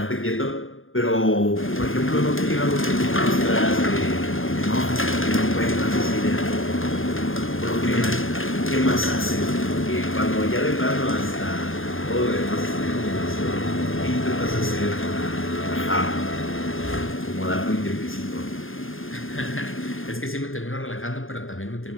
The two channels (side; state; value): right; late; 0.59 ms